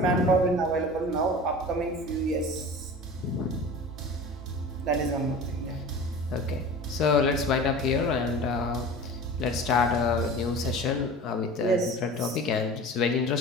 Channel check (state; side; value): normal; both; correlation 0.37